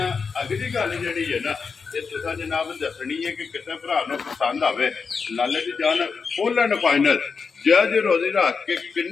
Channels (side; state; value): right; quieter; 5.3 dB